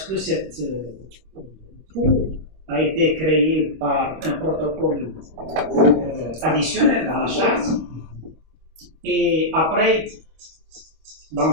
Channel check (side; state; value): left; late; 25 ms